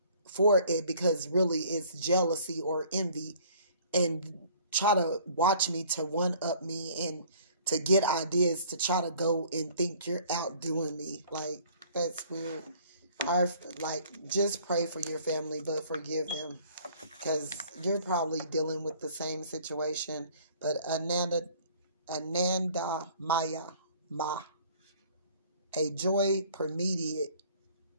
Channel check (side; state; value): both; inverted; correlation -0.54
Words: for it because really it's jealousy or envy, and try to watch me to one-up me and to get ideas to try to go and think you're outdoing me. Like, that's weird. Just pray for your family, but forgive them, because you're probably dealing with the same situation. But Ananda Maya Ma, a joy permeated